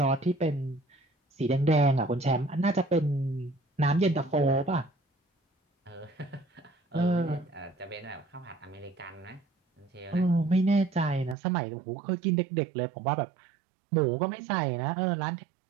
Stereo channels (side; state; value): left; drops out; at 11.4 s